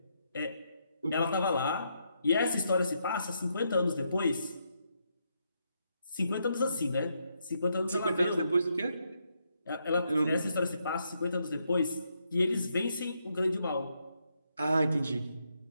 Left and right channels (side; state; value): both; inverted; correlation -0.78